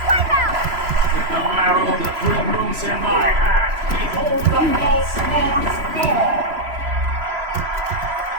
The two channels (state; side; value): late; left; 3.0 ms